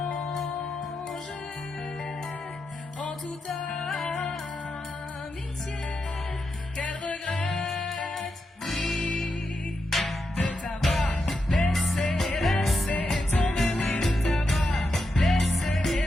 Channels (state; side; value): normal; both; correlation 0.86